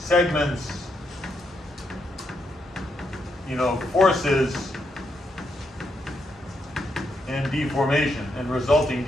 forces and deformation and resulting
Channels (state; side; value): normal; both; correlation 0.80